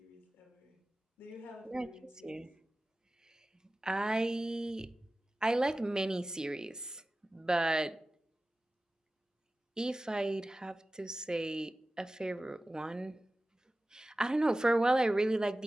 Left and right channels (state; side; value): normal; both; correlation 0.96